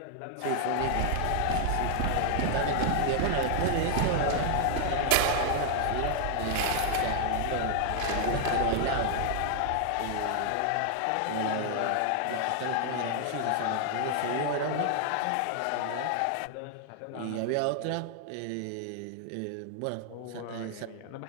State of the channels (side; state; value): both; different; correlation 0.00